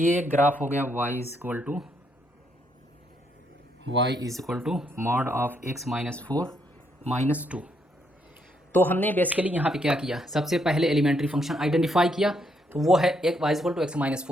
ग्राफ हो गया y is equal to mod of x minus 4 minus 2। तो हमने बेसिकली यहाँ पे क्या किया, सबसे पहले एलिमेंट्री फंक्शन आइडेंटिफाई किया, तो वो है एक y equal to x minus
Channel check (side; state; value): both; normal; correlation 0.75